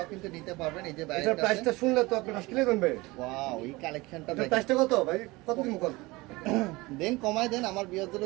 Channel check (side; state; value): left; quieter; 22.0 dB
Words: কিন্তু নিতে পারবেন। এই যে এটার প্রাইসটা শুনলে তো আপনি হাসকিলে দেবেন। ওয়াও, এই কালেকশনটা এটার প্রাইসটা কত ভাই? কত দিন কত? দেন, কমায় দেন, আমার বিয়ারদের